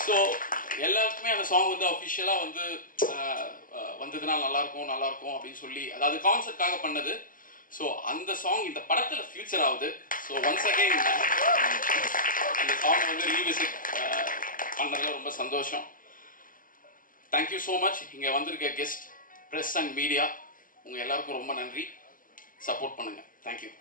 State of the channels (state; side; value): late; right; 0.40 ms